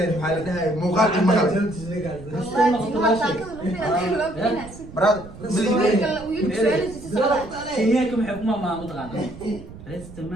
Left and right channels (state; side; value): noise; right; rumble, 16 dB below the sound